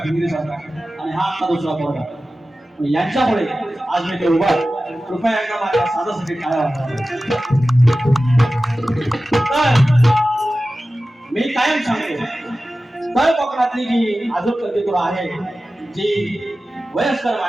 भिंगरी सारखा आणि हा आता दुसरा पोरगा. यांच्यामुळे आज मी ते उभा. कृपया एकदा माझ्या साधासाठी काय तर मी कायम सांगतो, तळ कोकणातली जी आजूक कल्पितुर आहे, जी वयस्कर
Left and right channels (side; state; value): both; normal; correlation 0.95